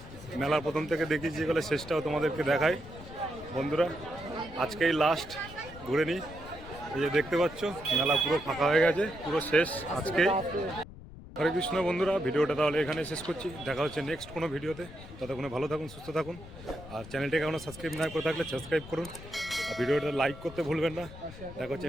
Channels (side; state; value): left; noise; rumble, 15 dB below the sound